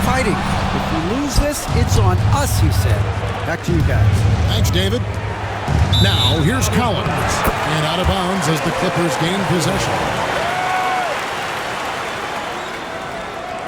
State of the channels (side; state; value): both; identical; correlation 1.00